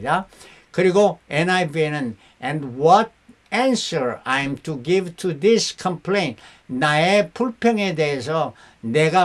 그리고 NIV에는 and what answer I'm to give to this complaint. 나의 불평에 대해서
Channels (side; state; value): both; identical; correlation 1.00